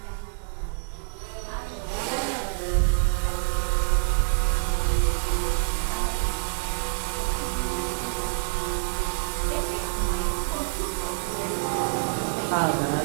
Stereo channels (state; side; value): silent; left; digital silence